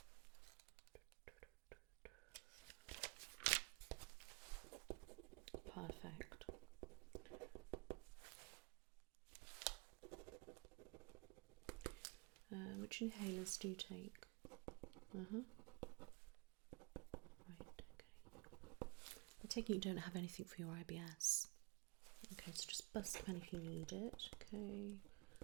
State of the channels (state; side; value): quieter; left; 28.1 dB